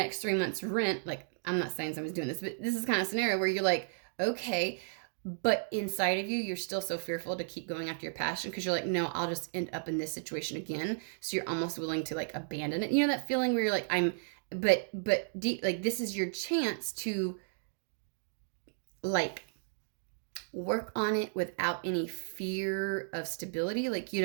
3 months rent. Like, I'm not saying someone's doing this, but this is kind of a scenario where you're like, okay, but inside of you, you're still so fearful to keep going after your passion, because you're like, no, I'll just end up in this situation again. So you're almost willing to like abandon it. You know that feeling where you're like, but deep, like, this is your chance to like work on it without any fear of stability. Like,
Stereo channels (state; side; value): silent; left; digital silence